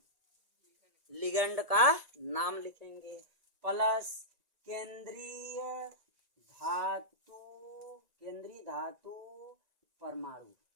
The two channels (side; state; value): left; late; 1.9 ms